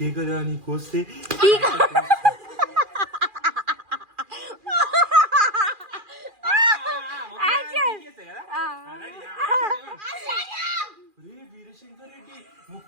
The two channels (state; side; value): late; left; 2.4 ms